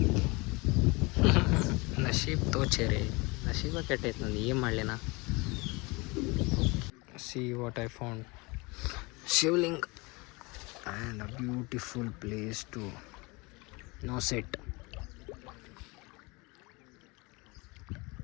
ನಶೀಬ್ ತೋಚೇರಿ, ನಶೀಬ ಕೆಟ್ಟೈತೆ ನಂದು, ಏನು ಮಾಡಲಿನ. See what I found. Shivling and a beautiful place to sit.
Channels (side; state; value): right; quieter; 26.0 dB